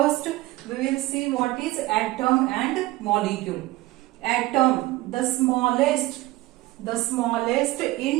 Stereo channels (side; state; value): left; quieter; 18.7 dB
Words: we will see what is atom and molecule. Atom, the smallest